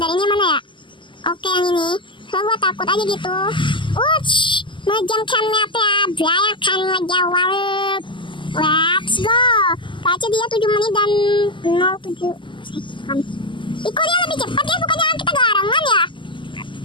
ini mana ya? Oke yang ini. So gue takut aja gitu. Ngejamkan meta ya. Akan ngejawab. Let's go. Kaca dia 7 menit dan 07 second. Iko dia lebih cepat ya, bukannya kita garangan ya?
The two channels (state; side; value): late; right; 0.24 ms